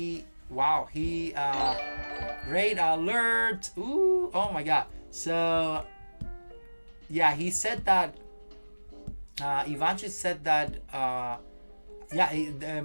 alert. Ooh, oh my god. So yeah, he said that Ivanchuk said that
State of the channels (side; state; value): both; inverted; correlation -1.00